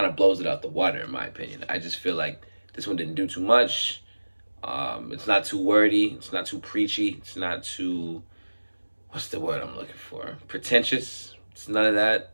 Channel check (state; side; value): inverted; both; correlation -1.00